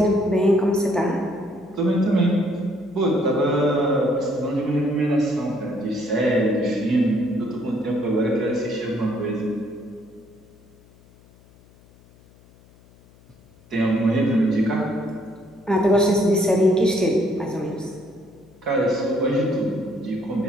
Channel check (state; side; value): noise; left; hum, 28 dB below the sound